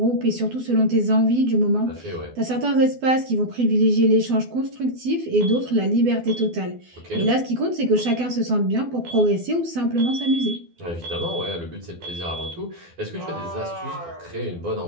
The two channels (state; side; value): late; left; 12 ms